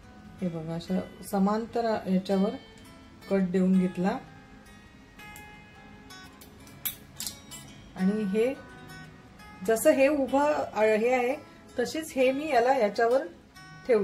हे बघा, अशा समांतर याच्यावर कट देऊन घेतला आणि हे जसं हे उभं हे आहे तशीच हे मी याच्यावर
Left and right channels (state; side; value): identical; both; correlation 1.00